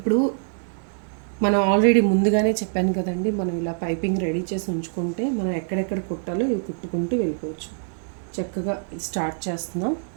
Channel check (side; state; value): left; silent; digital silence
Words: మనం ఆల్రెడీ ముందుగానే చెప్పాను కదండి, మనం ఇలా పైపింగ్ రెడీ చేసి ఉంచుకుంటే మనం ఎక్కడెక్కడ కుట్టాలో ఇవి కుట్టుకుంటూ వెళ్ళిపోవచ్చు. చక్కగా స్టార్ట్ చేస్తున్నాం.